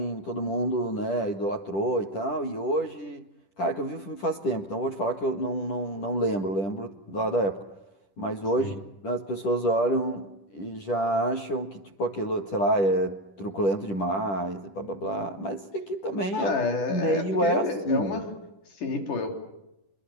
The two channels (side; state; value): right; late; 10 ms